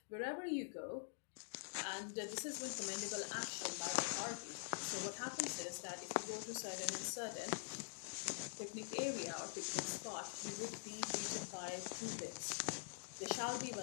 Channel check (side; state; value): right; silent; digital silence